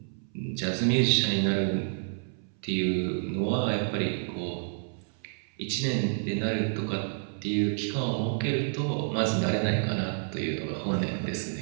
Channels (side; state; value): left; silent; 58 dB below the other